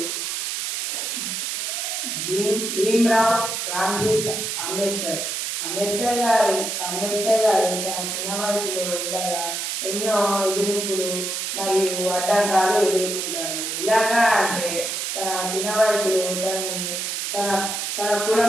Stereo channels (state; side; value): noise; right; hiss, 2 dB below the sound